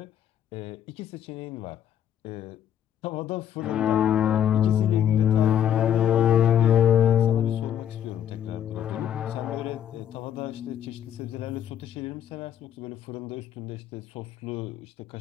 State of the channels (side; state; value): right; quieter; 9.9 dB